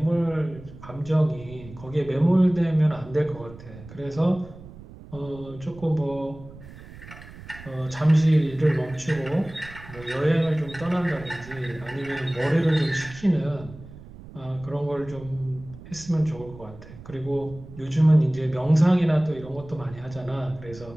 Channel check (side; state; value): right; noise; rumble, 17 dB below the sound